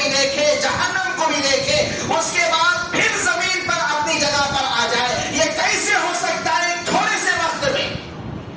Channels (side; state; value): both; identical; correlation 1.00